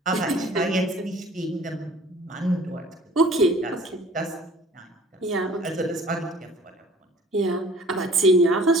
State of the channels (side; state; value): both; normal; correlation 0.51